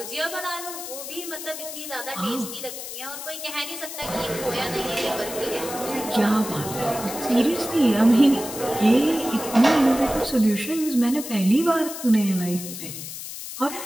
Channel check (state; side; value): noise; left; hiss, 9 dB below the sound